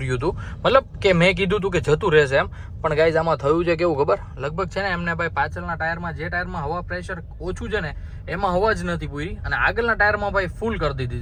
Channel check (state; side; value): identical; both; correlation 1.00